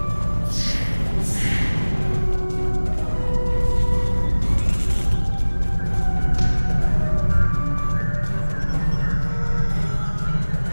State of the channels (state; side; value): inverted; both; correlation -1.00